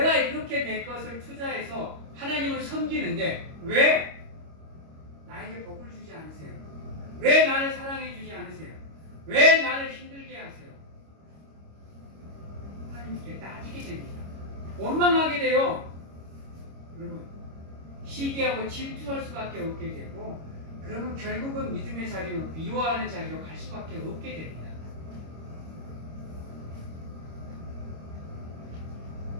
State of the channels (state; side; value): late; left; 25 ms